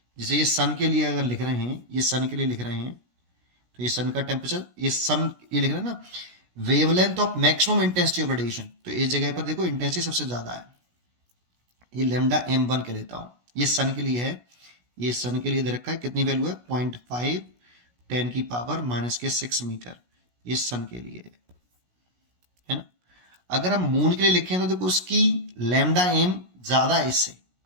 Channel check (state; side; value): late; left; 16 ms